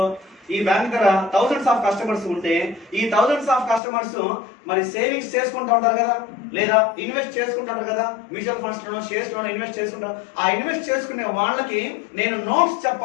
ఈ బ్యాంక్ దగ్గర థౌసండ్స్ ఆఫ్ కస్టమర్స్ ఉంటే ఈ థౌసండ్స్ ఆఫ్ కస్టమర్స్ మరి సేవింగ్స్ చేసుకుంటూ ఉంటారు కదా, లేదా ఇన్వెస్ట్ చేసుకుంటారు కదా, మ్యూచువల్ ఫండ్స్ లోనో షేర్స్ లోనో ఇన్వెస్ట్ చేసుకుంటారు. ఆ ఇన్వెస్ట్ చేసుకునే వాళ్ళకి నేను నోట్స్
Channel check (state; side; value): drops out; right; at 3.8 s